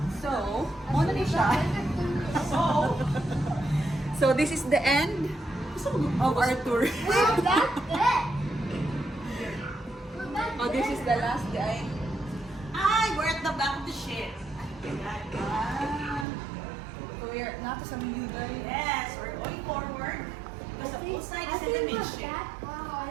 So, Ano ni siya? So this is the end of our tour. We're back there. We're back Oh, this is the last day. we're at the back of the ship. So we're not sa Miyuday. Yes, we're going forward. Because the pool side I is in the think we're midship. back. I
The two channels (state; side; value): drops out; left; at 16.2 s